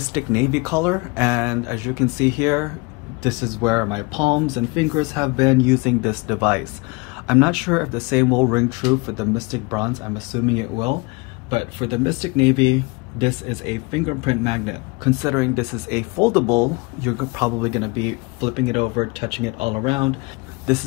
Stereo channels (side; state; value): right; quieter; 27.0 dB